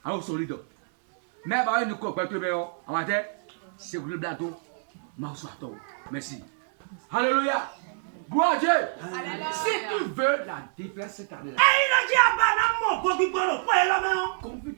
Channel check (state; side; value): silent; left; digital silence